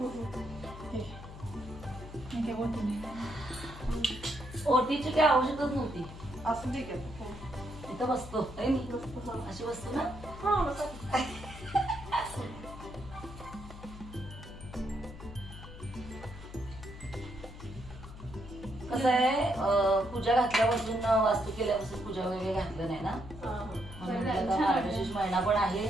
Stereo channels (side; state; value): left; noise; hum, 14 dB below the sound